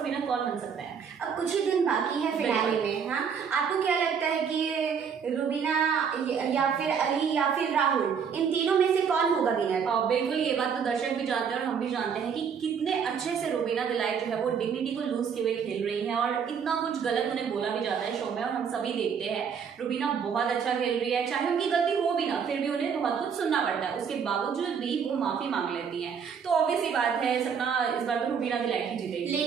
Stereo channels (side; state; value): left; quieter; 6.9 dB